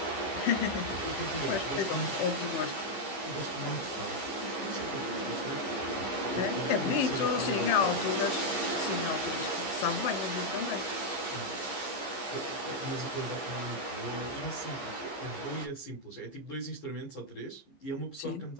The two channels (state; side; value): late; right; 15 ms